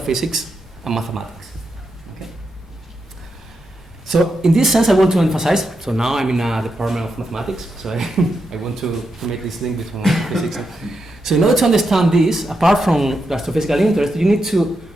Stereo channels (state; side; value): normal; both; correlation 0.85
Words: and mathematics. Okay. So in this sense, I want to emphasize, so now I'm in a department of mathematics, so I want to make this link between physics. So in order to understand this, apart from the astrophysical interest, you need to